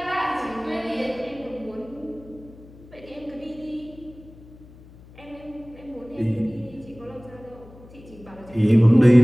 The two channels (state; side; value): noise; left; hum, 21 dB below the sound